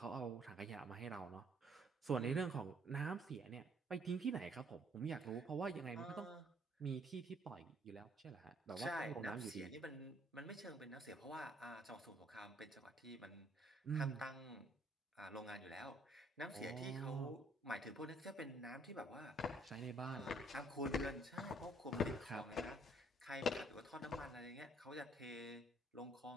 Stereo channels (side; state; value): both; normal; correlation 0.64